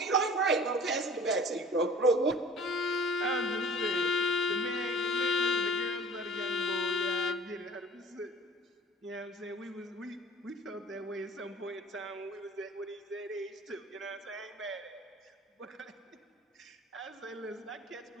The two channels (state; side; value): normal; both; correlation 0.47